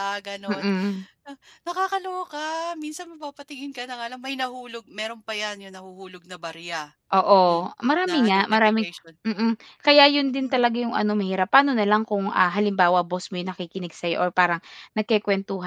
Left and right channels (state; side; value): identical; both; correlation 1.00